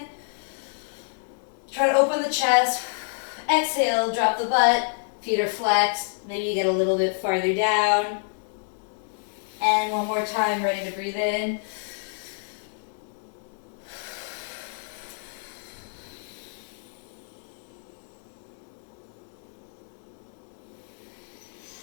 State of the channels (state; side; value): silent; right; digital silence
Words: Try to open the chest. Exhale, drop the butt. Feet are flexed. Maybe you get a little bit farther down. And 1 more time, ready to breathe in.